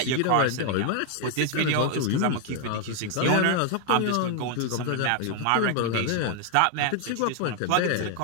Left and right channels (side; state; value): both; different; correlation 0.01